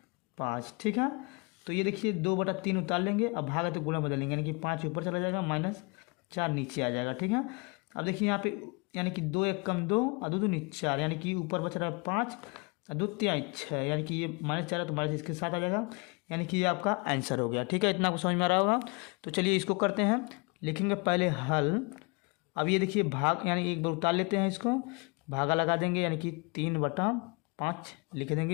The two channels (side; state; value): right; quieter; 30.6 dB